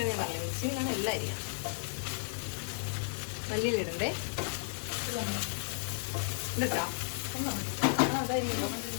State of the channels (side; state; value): right; silent; 55 dB below the other